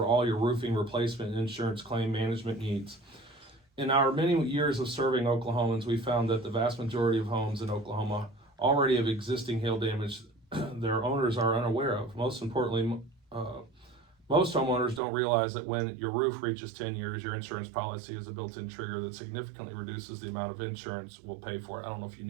all your roofing replacement and insurance claim management needs. In our many years of serving Oklahomans, we found that the vast majority of homes in Oklahoma already have existing hail damage their owners are unaware of. Most importantly, most homeowners don't realize that when your roof reaches 10 years, your insurance policy is a built-in trigger that significantly reduces the amount of insurance we'll pay for it. I don't know if you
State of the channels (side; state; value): left; drops out; at 15.0 s